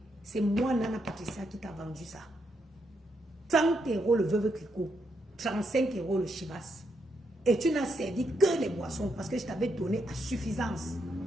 C'est moi, Nana Patricia, qui t'a vendu ça. 30 € le Veuve Clicquot, 35 € le Chivas. Et tu n'as servi que les boissons parce que je t'avais donné à suffisance.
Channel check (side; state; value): both; normal; correlation 0.79